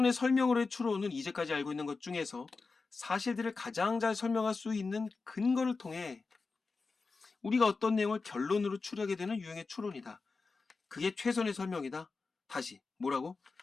설명으로의 추론은 이제까지 알고 있는 것 중에서 사실들을 가장 잘 설명할 수 있는 근거를 통해 우리가 어떤 내용을 결론으로 추리하게 되는 유형의 추론이다. 그게 최선의 설명이다. 다시 뭐라고?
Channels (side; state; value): right; quieter; 4.2 dB